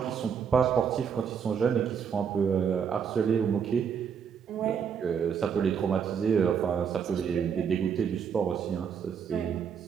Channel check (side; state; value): left; quieter; 7.1 dB